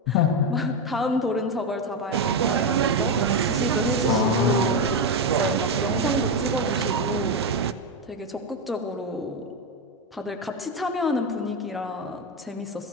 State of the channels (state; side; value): normal; both; correlation 0.09